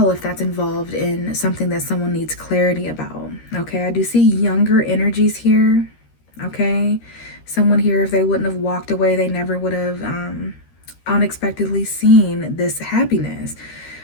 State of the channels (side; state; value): right; late; 13 ms